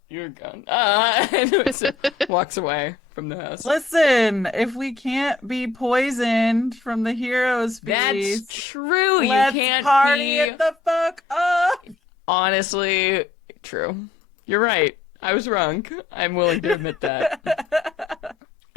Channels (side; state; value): right; quieter; 4.4 dB